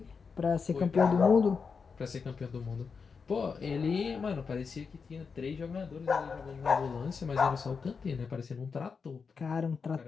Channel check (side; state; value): right; quieter; 5.4 dB